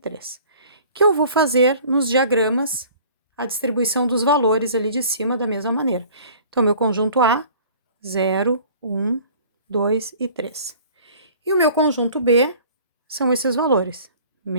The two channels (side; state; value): both; inverted; correlation -0.49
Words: Que eu vou fazer nos diagramas a distribuição dos valores ali de cima da mesma maneira. Então, meu conjunto A, 0, 1, 2 e 3. E o meu conjunto B são esses valores,